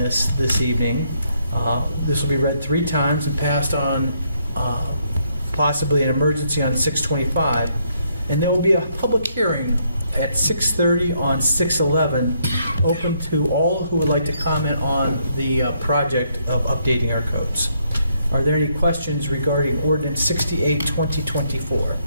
evening. This will be read 3 times and passed on possibly an emergency on 6/25. And there will be a public hearing at 6:30 on 6/11, open to all who would like to comment on the project of updating our codes. Are there any questions regarding Ordinance 68, 2024?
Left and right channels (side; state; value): both; inverted; correlation -0.73